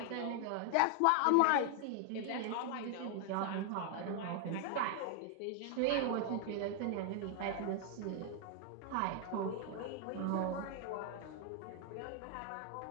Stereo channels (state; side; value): different; both; correlation 0.00